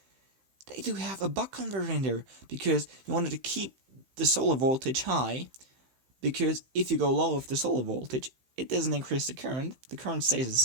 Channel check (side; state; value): left; late; 15 ms